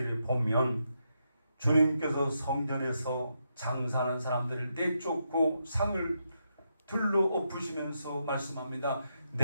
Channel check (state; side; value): inverted; both; correlation -0.82